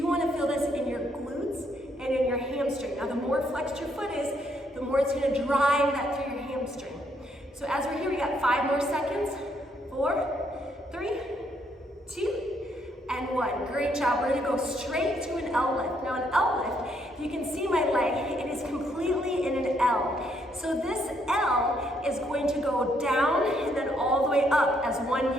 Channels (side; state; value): both; normal; correlation 0.72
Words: want to feel this in your glutes and in your hamstring. Now the more flexed your foot is, the more it's going to drive that through your hamstring. So as we're here, we got 5 more seconds. 4, 3, 2, and 1. Great job. We're going to go straight to an L lift. Now an L lift, if you can see my leg, it is completely in an L. So this L is going to go down and then all the way up as one